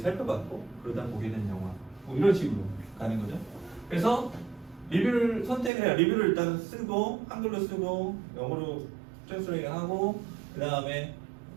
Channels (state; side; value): drops out; left; at 5.7 s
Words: 살펴봤고 그러다 보게 된 영화 뭐 이런 식으로 가는 거죠. 그래서 리뷰를 선택을 해요. 리뷰를 일단 쓰고 한글로 쓰고 영어로 트랜스레이트하고 그 다음에